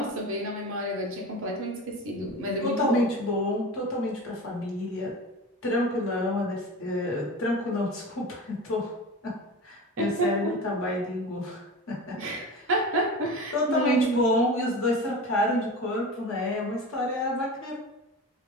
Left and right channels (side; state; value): both; normal; correlation 0.31